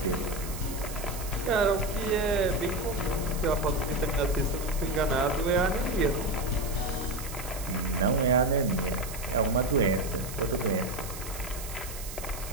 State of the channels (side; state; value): right; noise; hiss, 11 dB below the sound